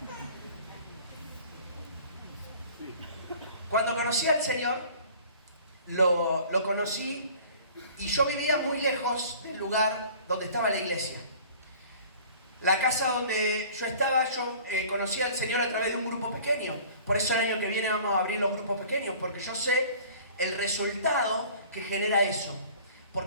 Cuando conocí al Señor, lo conocí y yo vivía muy lejos del lugar donde estaba la iglesia. La casa donde yo estaba, yo conocí al Señor a través de un grupo pequeño. Por eso el año que viene vamos a abrir los grupos pequeños, porque yo sé el resultado que genera eso.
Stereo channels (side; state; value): both; inverted; correlation -0.47